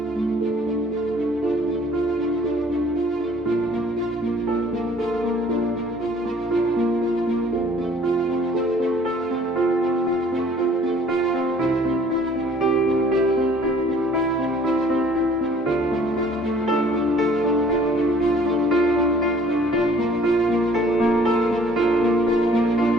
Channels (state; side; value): normal; both; correlation 0.56